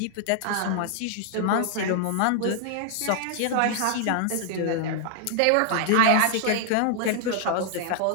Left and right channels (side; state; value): both; different; correlation 0.00